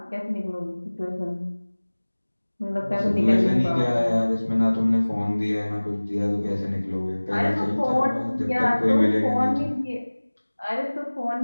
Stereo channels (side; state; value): both; inverted; correlation -1.00